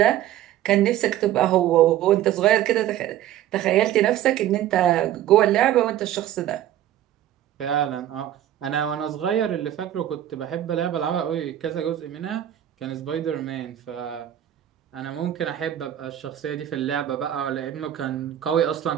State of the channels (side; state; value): left; quieter; 11.9 dB